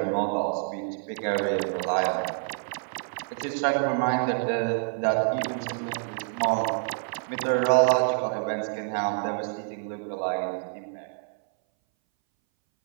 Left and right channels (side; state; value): left; silent; 60 dB below the other